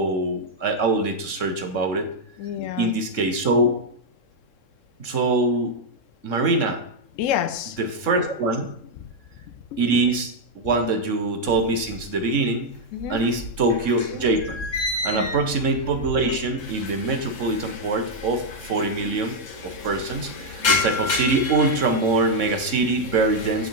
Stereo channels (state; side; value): late; right; 3.7 ms